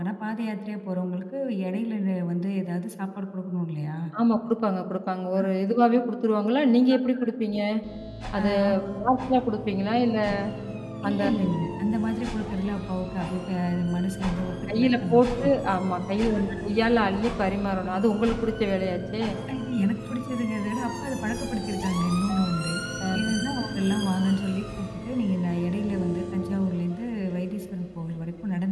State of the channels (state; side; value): identical; both; correlation 1.00